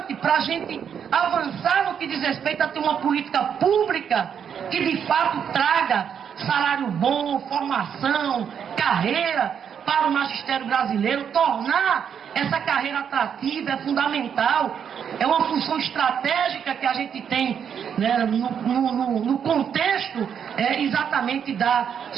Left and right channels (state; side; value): quieter; left; 7.9 dB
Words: para a gente avançar no que diz respeito a ter uma política pública que de fato traga salário bom, formação, carreira para o magistério brasileiro. Tornar essa carreira atrativa é fundamental, é uma função estratégica que a gente tem, né, no contexto exatamente da